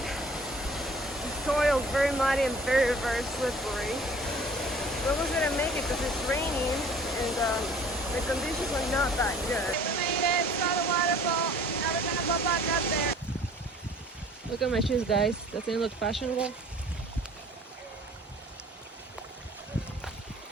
The soil is very muddy and very slippery. But we're gonna make it because it's raining and the conditions are not that good. We made it, saw the waterfall. Now we're gonna go back up there. Look at my shoes, guys. Doesn't it look fashionable?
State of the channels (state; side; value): normal; both; correlation 0.50